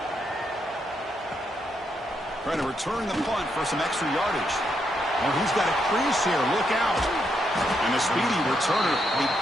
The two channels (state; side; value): normal; both; correlation 0.79